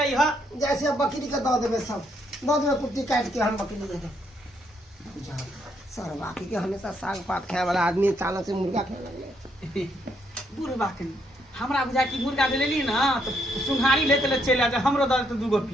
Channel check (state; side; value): normal; both; correlation 0.74